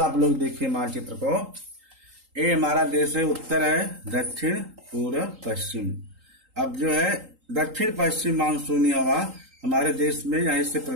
आप लोग देखिए मानचित्र को। ये हमारा देश है, उत्तर है, दक्षिण, पूर्व, पश्चिम। अब जो है दक्षिण पश्चिम मानसूनी हवा हमारे देश में यहीं से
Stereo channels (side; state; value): left; late; 3.8 ms